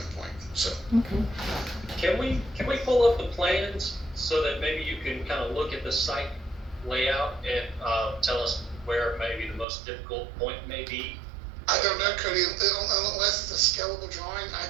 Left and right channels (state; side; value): drops out; left; at 9.7 s